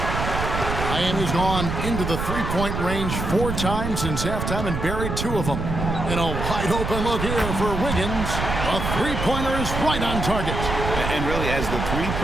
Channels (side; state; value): right; noise; rumble, 3 dB below the sound